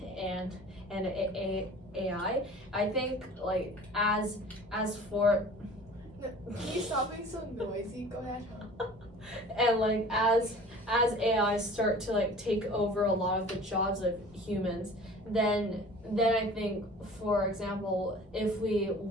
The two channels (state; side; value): normal; both; correlation 0.44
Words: AI, I think like as for Can you stop being so noisy? Go ahead. and like as AI start to like take over a lot of the jobs of humans, then I think, for example, if we